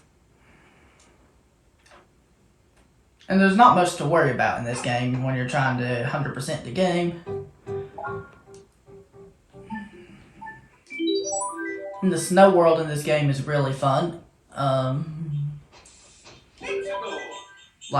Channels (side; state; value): both; identical; correlation 1.00